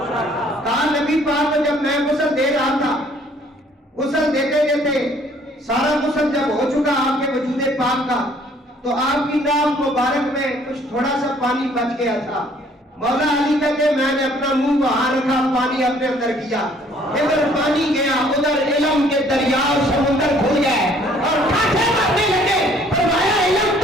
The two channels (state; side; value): normal; both; correlation 0.60